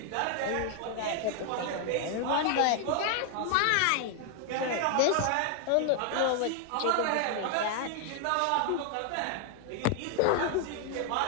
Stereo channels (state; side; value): different; both; correlation 0.00